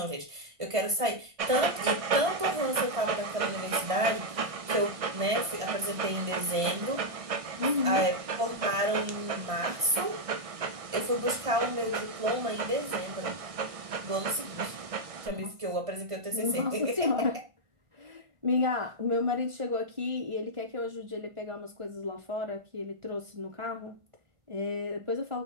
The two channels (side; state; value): left; late; 1.6 ms